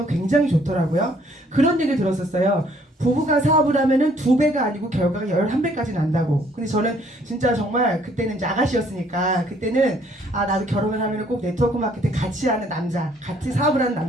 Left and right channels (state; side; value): normal; both; correlation 0.63